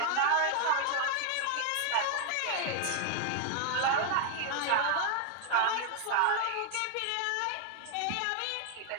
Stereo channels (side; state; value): both; different; correlation 0.00